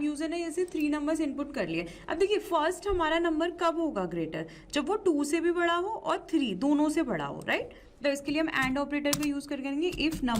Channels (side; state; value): both; identical; correlation 1.00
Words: यूजर ने ऐसे 3 नंबर्स इनपुट कर लिए। अब देखिए फर्स्ट हमारा नंबर कब होगा ग्रेटर, जब वो 2 से भी बड़ा हो और 3 दोनों से बड़ा हो, राइट। तो इसके लिए हम एंड ऑपरेटर का यूज कर करेंगे। If